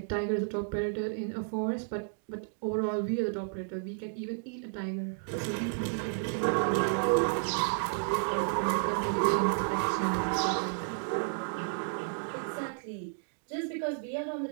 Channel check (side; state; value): left; silent; digital silence